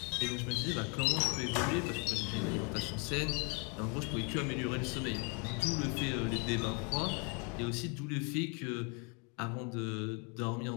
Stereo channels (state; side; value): quieter; right; 34.7 dB